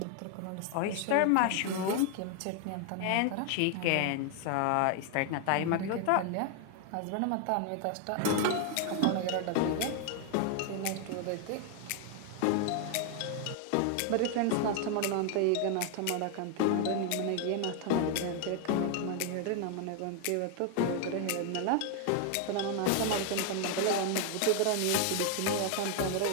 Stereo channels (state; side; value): different; both; correlation 0.00